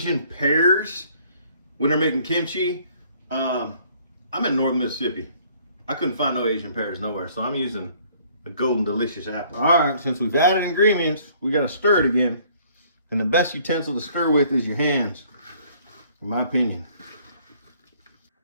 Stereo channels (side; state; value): both; inverted; correlation -0.59